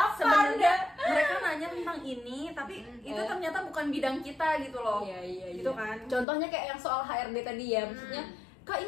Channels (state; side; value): drops out; right; at 6.2 s